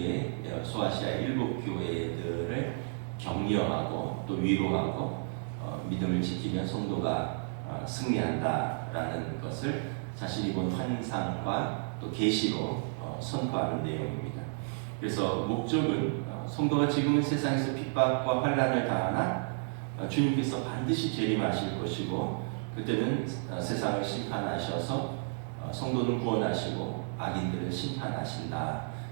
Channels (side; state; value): left; silent; digital silence